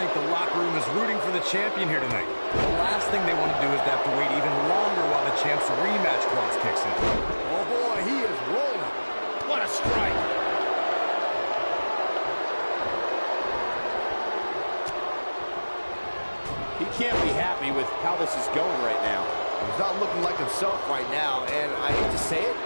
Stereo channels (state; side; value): inverted; both; correlation -1.00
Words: the locker room is rooting for the champion here tonight. The last thing they want to do is to have to wait even longer while the champ's rematch clause kicks in. Oh boy, he is rolling. What a strike! He can't be happy with how this is going right now. He's not looking like himself right now, and I hate to say it,